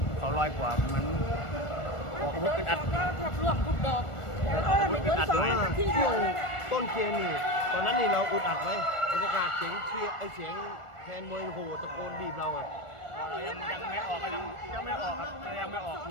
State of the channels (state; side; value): late; right; 1.4 ms